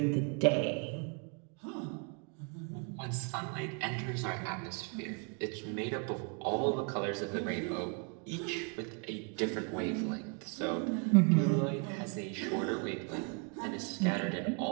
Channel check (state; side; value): quieter; left; 37.2 dB